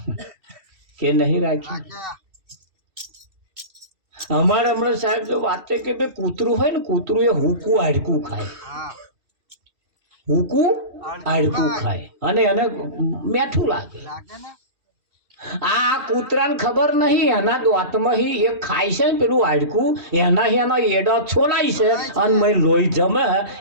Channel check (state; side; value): late; left; 2.7 ms